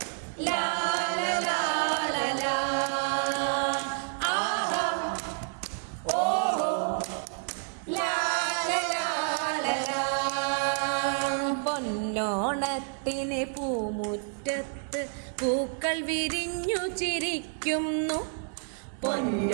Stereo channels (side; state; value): left; silent; 58 dB below the other